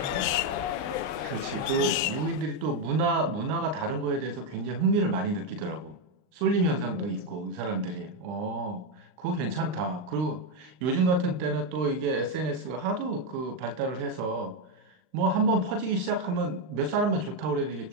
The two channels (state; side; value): late; left; 39 ms